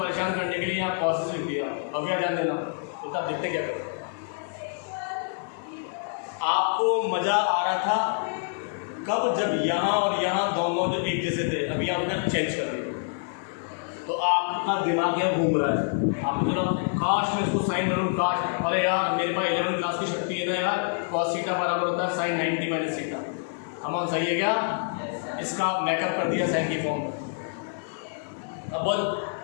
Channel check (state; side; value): silent; right; digital silence